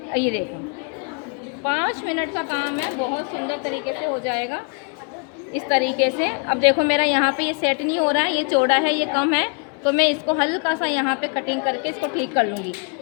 ये देखो 5 मिनट का काम है, बहुत सुंदर तरीके से हो जाएगा इस तरीके से। अब देखो मेरा यहाँ पे ये सेट नहीं हो रहा है, ये चौड़ा है, ये कम है, तो मैं इसको हल्का सा यहाँ पे कटिंग करके इसको ठीक कर लूँगी।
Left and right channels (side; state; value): right; quieter; 38.6 dB